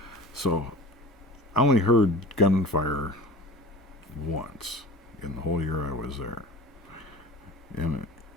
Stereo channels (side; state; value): both; normal; correlation 0.38